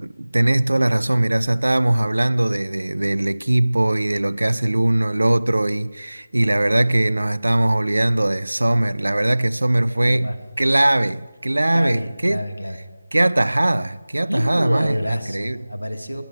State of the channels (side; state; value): both; inverted; correlation -0.99